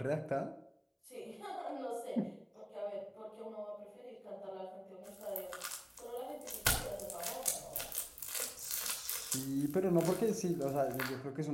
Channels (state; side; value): identical; both; correlation 1.00